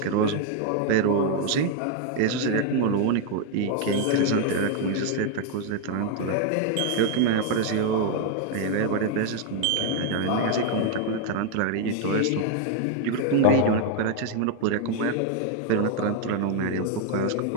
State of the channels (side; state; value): both; different; correlation 0.01